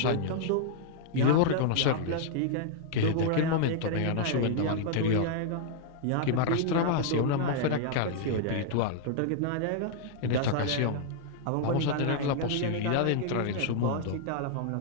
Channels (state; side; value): different; both; correlation -0.01